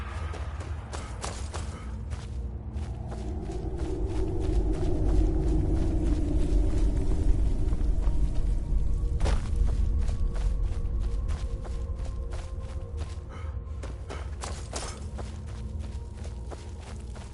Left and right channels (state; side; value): identical; both; correlation 1.00